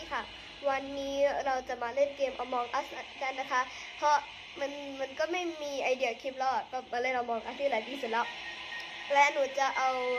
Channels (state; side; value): identical; both; correlation 1.00